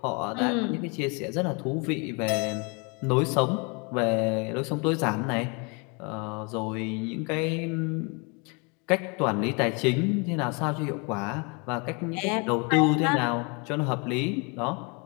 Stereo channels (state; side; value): quieter; right; 32.2 dB